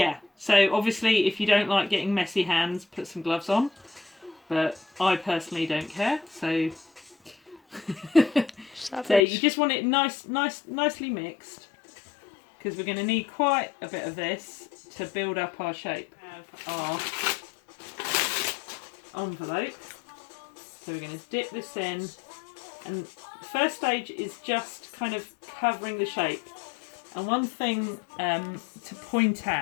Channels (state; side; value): drops out; right; at 9.2 s